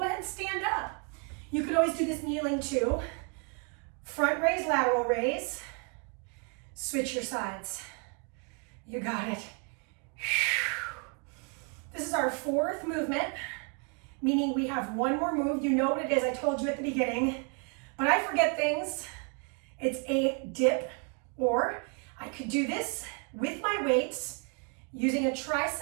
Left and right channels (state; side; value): quieter; left; 37.6 dB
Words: ahead and stand up. You could always do this kneeling too. Front raise, lateral raise. Switch your sides. You got it. This is our 4th movement, meaning we have one more move. You know what it is, I told you at the beginning, but I forget things. It's a dip, or I could do this with my weights using a